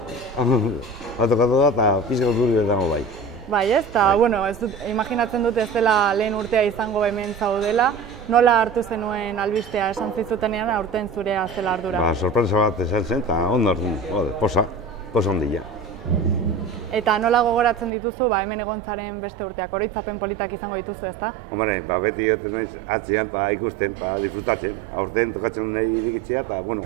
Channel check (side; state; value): left; drops out; at 17.9 s